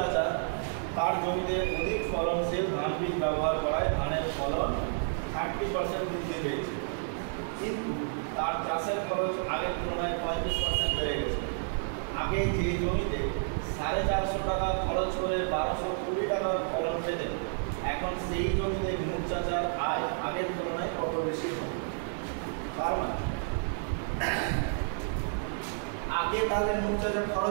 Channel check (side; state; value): left; silent; digital silence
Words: তার জমিতে অধিক ফলনশীল ধান বীজ ব্যবহার করায় ধানের ফলন 30% বৃদ্ধি পেয়েছে, কিন্তু তার চাষের খরচ আগের তুলনায় 35% বেড়ে গেছে। আগে যে জমিতে 450 টাকা খরচ করে 1220 টাকার ফলন পেতেন, এখন সেই জমিতে নূর চাচার আয় আগের তুলনায় কত বেশি হবে? কারণ আগে তাহলে নূর চাচার